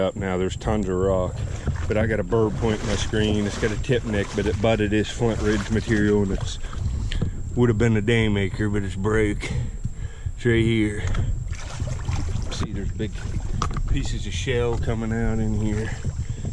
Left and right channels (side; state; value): both; identical; correlation 1.00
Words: now. There's tons of rock. But I got a bird point in my screen. It's got a tip neck, but it butted this Flint Ridge material, and it's would have been a daymaker, but it's broke. It's right here. See, there's big pieces of shell coming out in here.